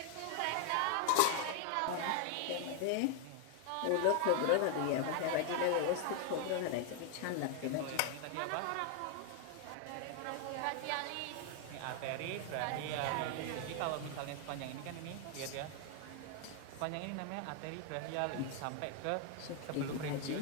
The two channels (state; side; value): different; both; correlation 0.00